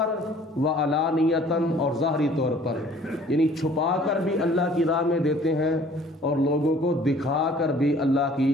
و علانیتاً اور ظاہری طور پر، یعنی چھپا کر بھی اللہ کی راہ میں دیتے ہیں اور لوگوں کو دکھا کر بھی اللہ کی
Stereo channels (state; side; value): normal; both; correlation 0.54